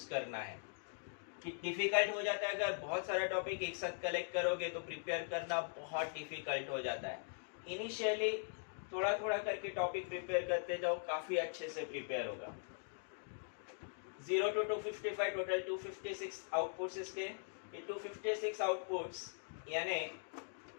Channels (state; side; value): silent; right; digital silence